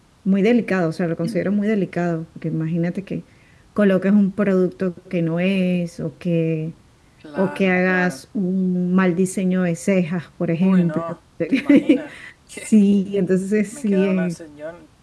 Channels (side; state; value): both; identical; correlation 1.00